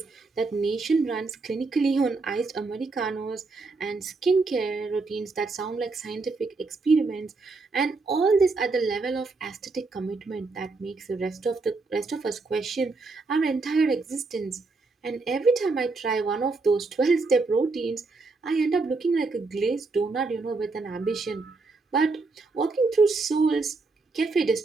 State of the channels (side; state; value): left; quieter; 3.8 dB